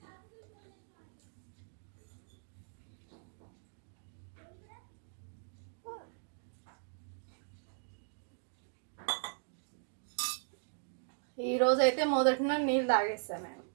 ఈరోజైతే మొదటిన నీళ్ళు తాగేస్తాను నేను,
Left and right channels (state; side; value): silent; left; digital silence